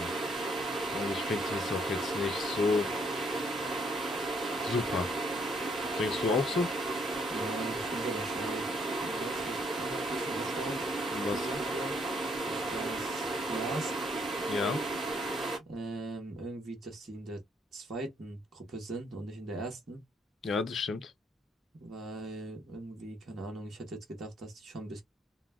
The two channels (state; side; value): normal; both; correlation 0.69